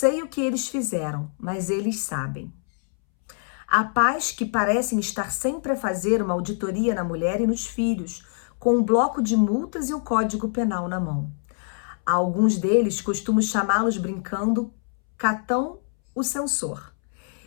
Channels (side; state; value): right; silent; 62 dB below the other